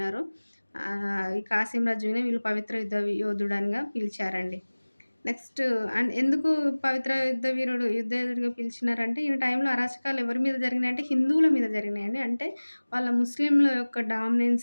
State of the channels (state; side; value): inverted; both; correlation -1.00